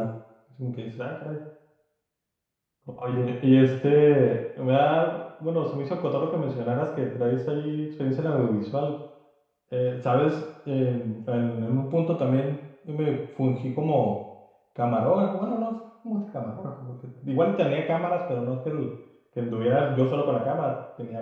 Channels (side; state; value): both; identical; correlation 1.00